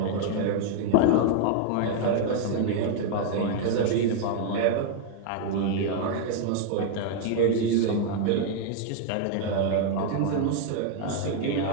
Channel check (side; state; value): both; different; correlation 0.00